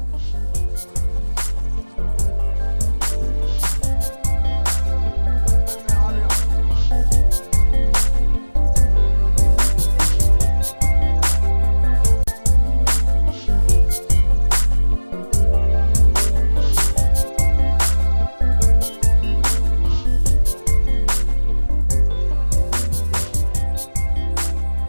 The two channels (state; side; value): inverted; both; correlation -1.00